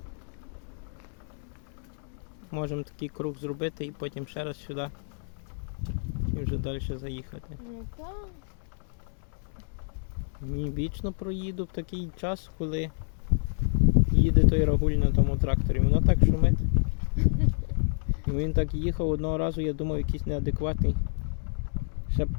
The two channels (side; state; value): right; silent; 59 dB below the other